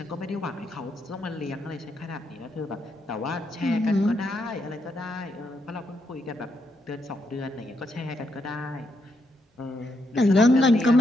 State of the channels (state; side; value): normal; both; correlation 0.79